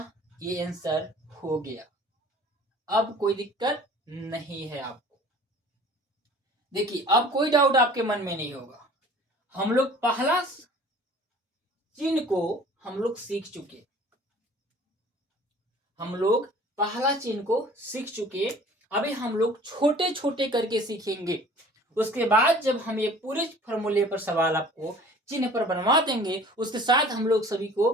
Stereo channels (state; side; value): normal; both; correlation 0.48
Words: ये आंसर हो गया, अब कोई दिक्कत नहीं है आपको। देखिए अब कोई डाउट आपके मन में नहीं होगा। हम लोग पहला चिन्ह को हम लोग सीख चुके, हम लोग पहला चिन्ह को सीख चुके। अभी हम लोग छोटे छोटे करके सीखेंगे, उसके बाद जब हम ये पूरे फॉर्मूले पर सवाल आपको चिन्ह पर बनवा देंगे, उसके साथ हम लोग सभी को